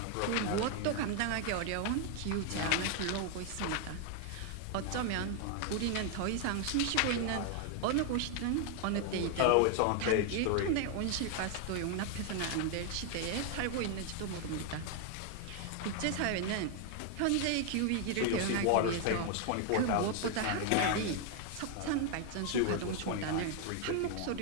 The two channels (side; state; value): both; different; correlation 0.00